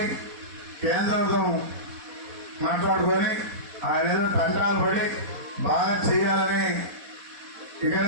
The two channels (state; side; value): late; left; 4.1 ms